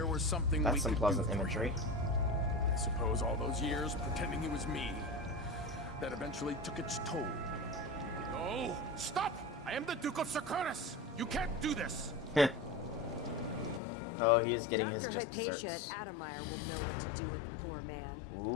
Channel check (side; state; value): right; drops out; at 13.8 s